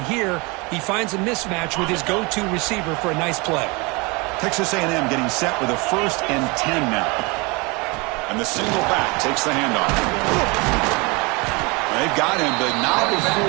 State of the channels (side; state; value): left; quieter; 27.2 dB